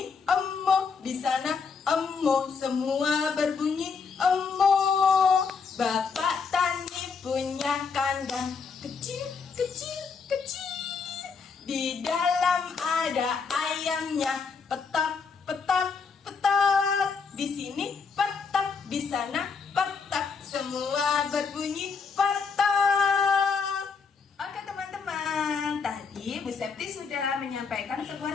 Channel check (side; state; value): right; quieter; 5.4 dB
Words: emo, di sana emo. Semua berbunyi emo. Bapak Tani punya kandang kecil, kecil, kecil. Di dalam ada ayamnya. Petak, petak, petak. Di sini petak, di sana petak. Semua berbunyi petak. Oke teman-teman, tadi Bu Septi sudah menyampaikan sebuah